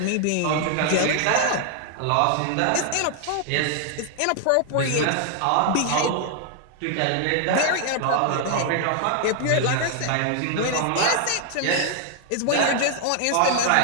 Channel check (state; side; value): different; both; correlation 0.00